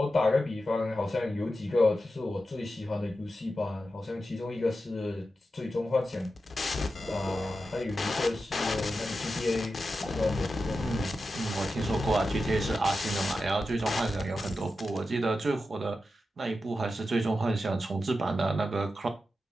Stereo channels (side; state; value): both; normal; correlation 0.90